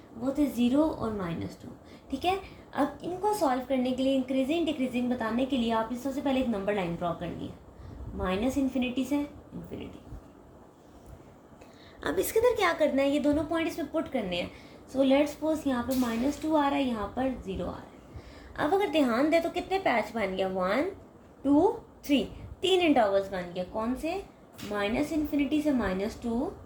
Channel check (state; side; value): identical; both; correlation 1.00